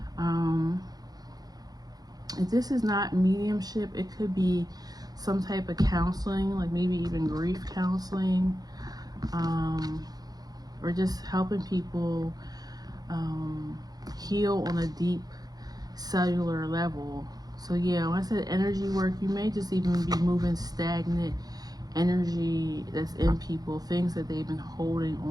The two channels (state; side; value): late; left; 0.19 ms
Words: If this is not mediumship, it could be some type of counseling, like maybe even grief counseling, or just helping people heal on a deep cellular level. So yeah, when I said energy work, you may just even be moving stagnant energy that's in people, things that they've been holding